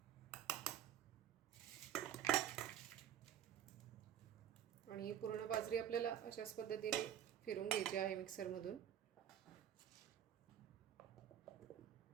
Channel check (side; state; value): left; quieter; 10.3 dB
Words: आणि पूर्ण बाजरी आपल्याला अशाच पद्धतीने फिरवून घ्यायची आहे मिक्सरमधून.